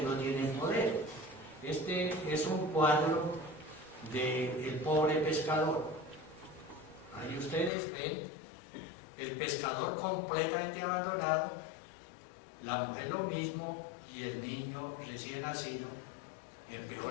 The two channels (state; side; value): drops out; right; at 7.7 s